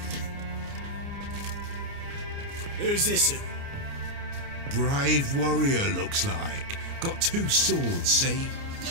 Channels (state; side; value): late; left; 29 ms